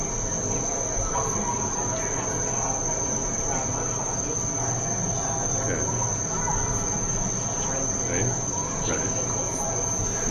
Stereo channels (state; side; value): identical; both; correlation 1.00